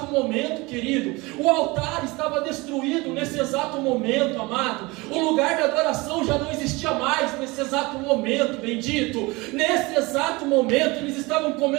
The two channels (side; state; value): left; quieter; 23.8 dB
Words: momento, querido. O altar estava destruído nesse exato momento, amado. O lugar de adoração já não existia mais nesse exato momento, bendito. Nesse exato momento eles estavam